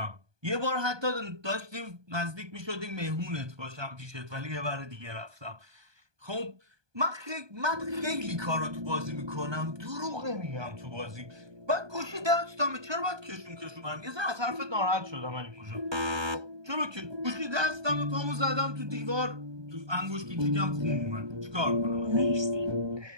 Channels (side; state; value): left; late; 1.2 ms